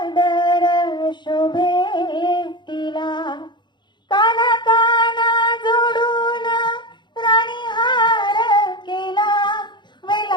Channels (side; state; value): right; late; 0.22 ms